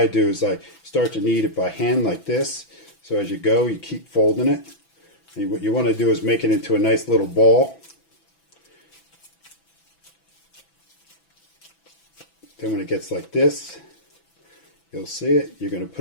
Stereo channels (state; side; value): late; right; 6.0 ms